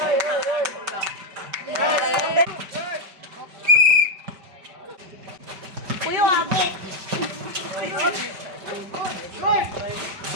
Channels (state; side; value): late; left; 5.0 ms